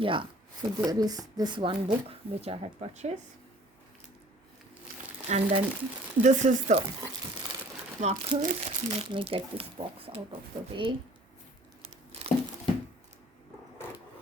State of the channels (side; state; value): both; normal; correlation 0.52